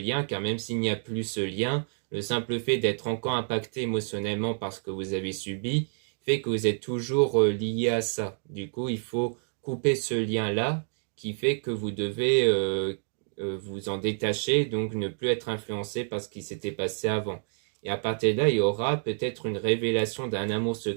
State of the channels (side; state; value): left; silent; digital silence